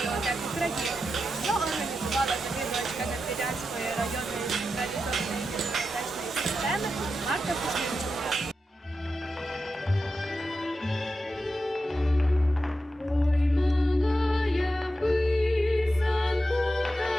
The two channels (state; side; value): normal; both; correlation 0.89